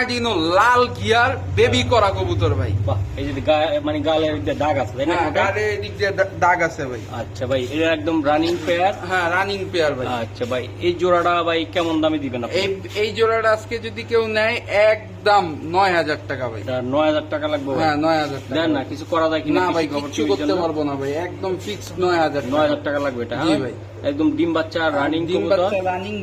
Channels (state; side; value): identical; both; correlation 1.00